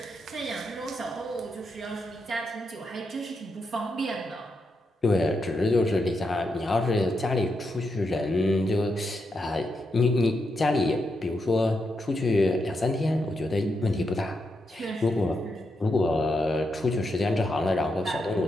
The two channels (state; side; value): normal; both; correlation 0.84